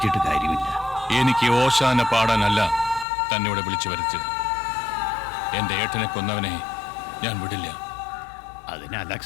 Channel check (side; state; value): right; drops out; at 3.1 s